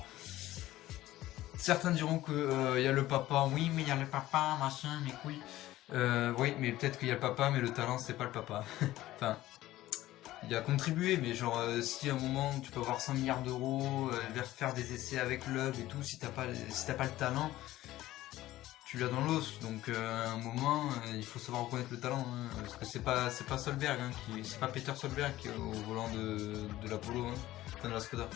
Certains diront que y a le papa, oui mais il y a le papa, machin, mes couilles. Oui mais peut-être qu'il y a le papa mais le talent c'est pas le papa. Enfin, il a contribué mais genre si à un moment tu peux avoir 100 milliards d'euros, faire des essais avec Loeb et tout, si t'as pas le talent, tu l'as dans l'os. Donc à un moment il faut savoir reconnaître le talent, hein, parce que c'est pas Solberg, hein, c'est pas Peter Solberg qui est au volant de l'Apollo, hein, de la Skoda.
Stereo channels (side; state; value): right; quieter; 15.6 dB